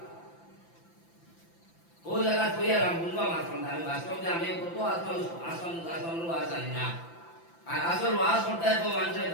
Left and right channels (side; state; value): right; late; 5.9 ms